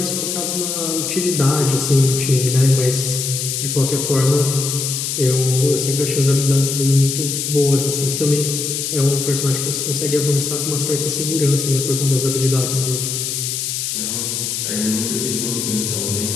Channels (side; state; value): left; noise; hiss, 2 dB below the sound